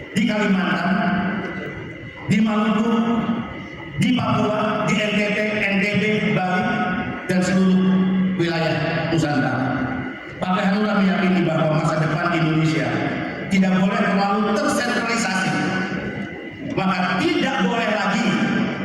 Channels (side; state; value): both; identical; correlation 1.00